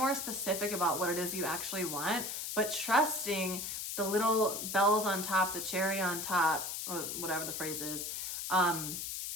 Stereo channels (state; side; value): noise; left; hiss, 4 dB below the sound